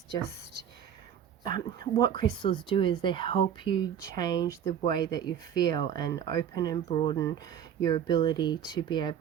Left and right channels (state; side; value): quieter; left; 9.0 dB